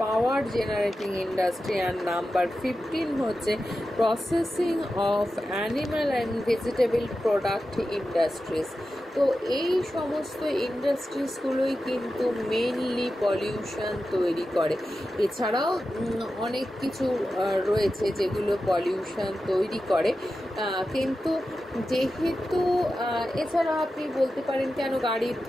পাওয়ার generating industry, and number 15 হচ্ছে processing of animal and vegetable product industries. তো এই সমস্ত ইন্ডাস্ট্রিজগুলোই কিন্তু মেনলি পলিউশন তৈরি করে। এছাড়াও অনেক কিছু রয়েছে যেগুলো পলিউশন তৈরি করে, কিন্তু যেহেতু এছাড়া আপনি বলতে পারেন কেন গাড়ির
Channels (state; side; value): normal; both; correlation 0.92